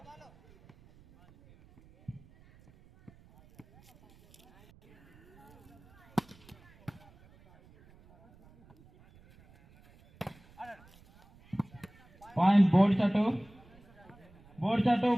Point board shot. Board shot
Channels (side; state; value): right; noise; rumble, 27 dB below the sound